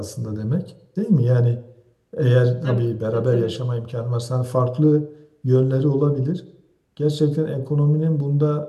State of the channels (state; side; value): identical; both; correlation 1.00